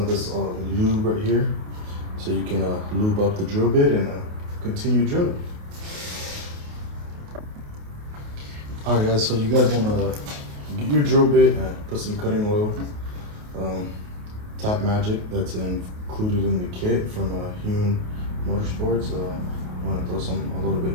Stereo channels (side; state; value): left; late; 28 ms